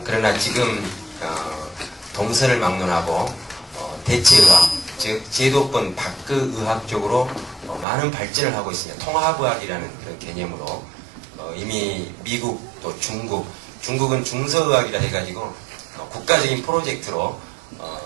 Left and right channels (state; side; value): drops out; left; at 7.9 s